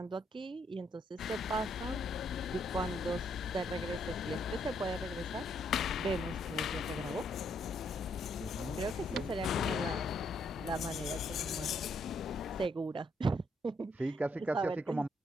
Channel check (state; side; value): normal; both; correlation 0.73